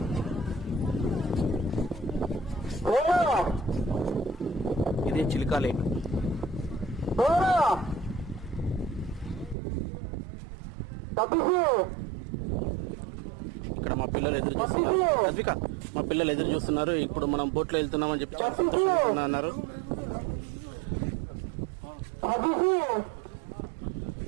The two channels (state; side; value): drops out; left; at 9.6 s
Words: ఇదే చిల్కా లేక్. ఇక్కడ మా పిల్లలు ఎదురు చూస్తున్నారు. అద్విక, మా పిల్లలు ఎదురు చూస్తున్నారు. ఇప్పుడు మనం బోట్లో వెళ్తున్నామని చెప్పి చాలా సంతోషంగా అన్నారు.